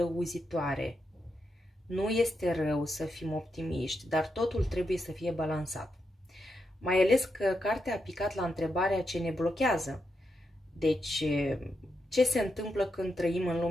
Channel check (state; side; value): normal; both; correlation 0.84